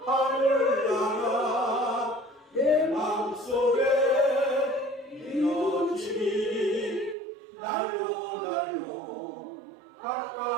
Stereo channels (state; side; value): drops out; left; at 7.2 s